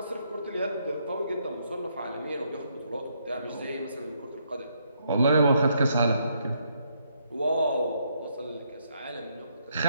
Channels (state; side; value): inverted; both; correlation -0.74